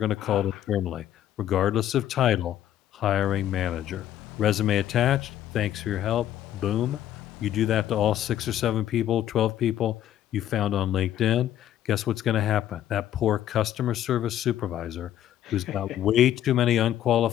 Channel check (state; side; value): quieter; right; 11.8 dB